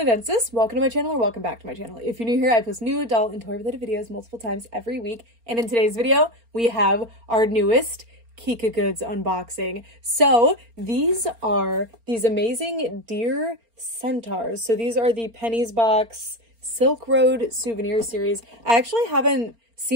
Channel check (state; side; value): late; left; 4.3 ms